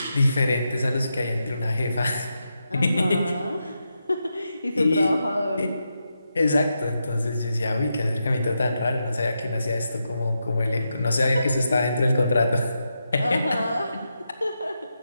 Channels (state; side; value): inverted; both; correlation -0.86